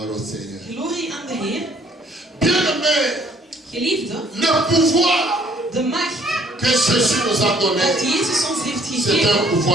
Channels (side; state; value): both; normal; correlation 0.61